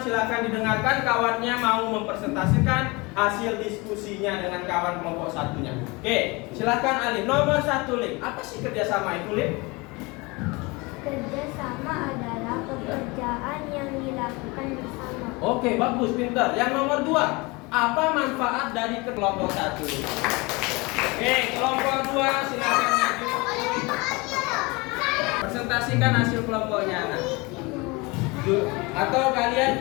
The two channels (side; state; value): right; quieter; 25.5 dB